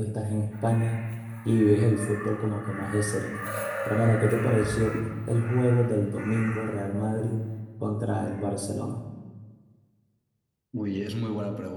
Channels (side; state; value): both; identical; correlation 1.00